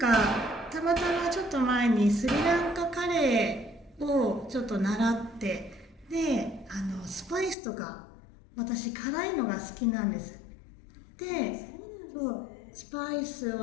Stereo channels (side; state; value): right; drops out; at 7.6 s